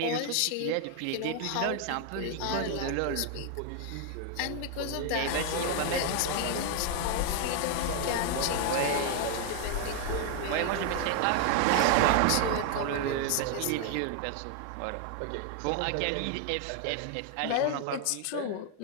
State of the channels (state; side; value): different; both; correlation 0.00